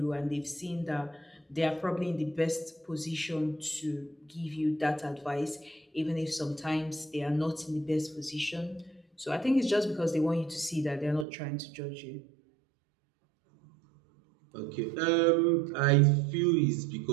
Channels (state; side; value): drops out; left; at 11.2 s